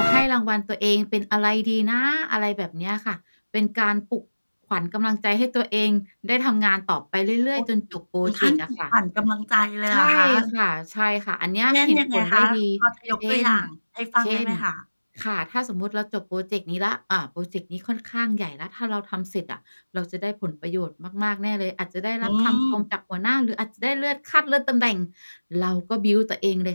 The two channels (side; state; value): both; inverted; correlation -1.00